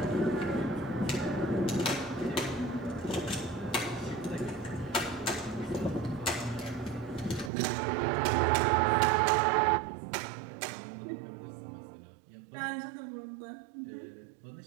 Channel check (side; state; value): left; drops out; at 7.5 s